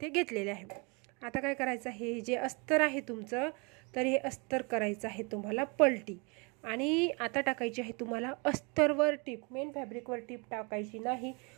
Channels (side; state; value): left; quieter; 30.9 dB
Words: घेतलेले आहे. आता काय करायचं, हे जे अस्तर आहे तुमचं, तर हे अस्तर करायचं आहे तुम्हाला पलटी. आणि आता टाकायची आहे तुम्हाला अस्तरवर टीप. मेन फॅब्रिकवर टीप टाकायची नाही,